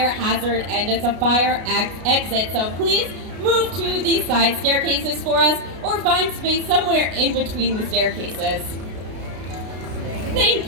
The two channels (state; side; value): late; left; 33 ms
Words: hazard, and it's a fire exit, so please move to the side staircases for us, or find space somewhere in between the staircases. Thank